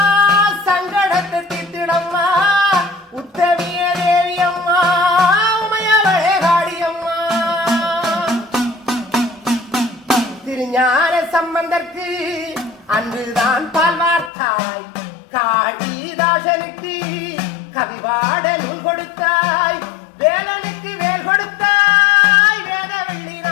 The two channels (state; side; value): drops out; right; at 14.3 s